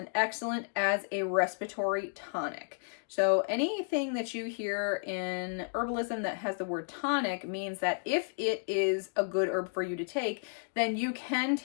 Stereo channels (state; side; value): silent; right; digital silence